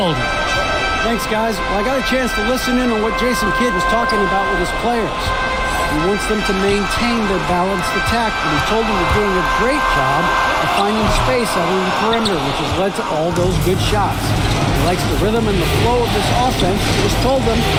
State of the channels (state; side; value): identical; both; correlation 1.00